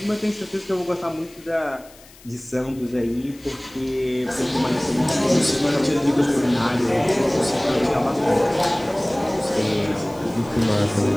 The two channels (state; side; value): noise; left; hiss, 24 dB below the sound